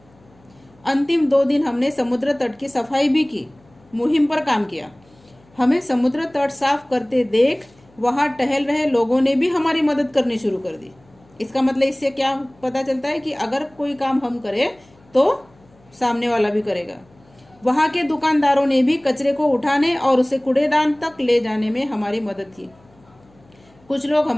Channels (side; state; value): left; noise; hum, 30 dB below the sound